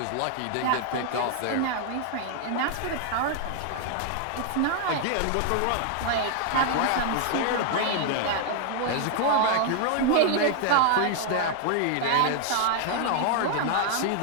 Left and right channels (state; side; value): different; both; correlation 0.00